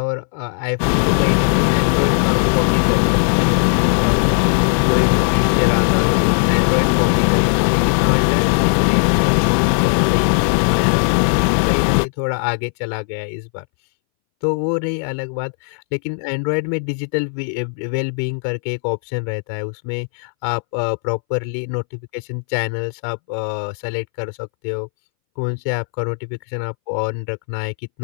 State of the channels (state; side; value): silent; right; 64 dB below the other